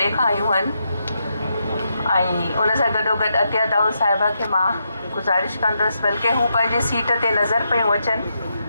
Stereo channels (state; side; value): inverted; both; correlation -0.82